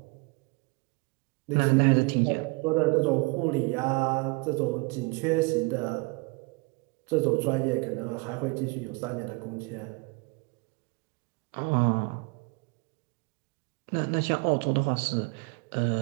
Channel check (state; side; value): quieter; left; 28.7 dB